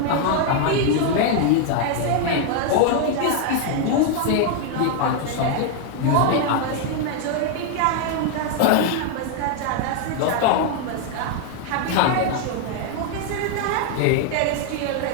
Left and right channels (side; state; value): both; different; correlation 0.00